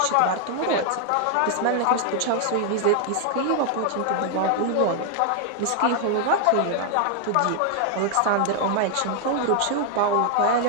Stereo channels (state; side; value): different; both; correlation 0.00